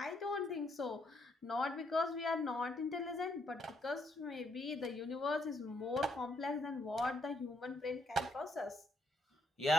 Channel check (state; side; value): normal; both; correlation 0.74